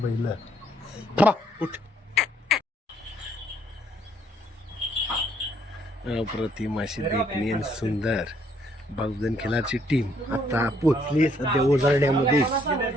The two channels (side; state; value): both; normal; correlation 0.68